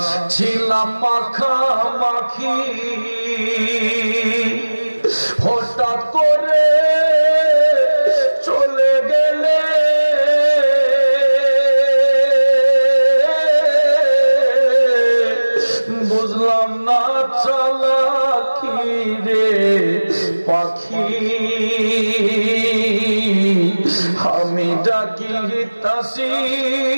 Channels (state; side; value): inverted; both; correlation -1.00